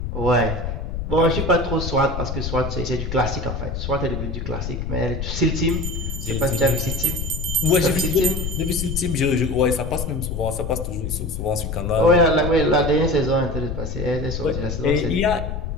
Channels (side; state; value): left; noise; rumble, 4 dB below the sound